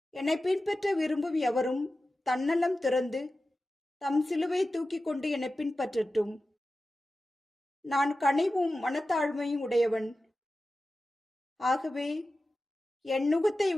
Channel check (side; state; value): both; normal; correlation 0.94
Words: என்னை பின்பற்ற விரும்பும் எவரும் தன்னலம் துறந்து தம் சிலுவை தூக்கி கொண்டு என்னை பின்பற்றட்டும். நான் கனிவும் மனத்தாழ்மையும் உடையவன். ஆகவே என் நுகத்தை